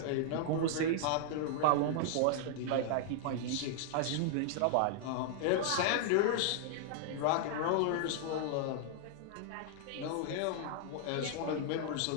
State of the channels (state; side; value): different; both; correlation -0.01